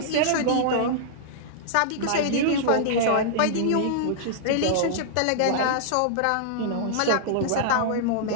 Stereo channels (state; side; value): different; both; correlation -0.01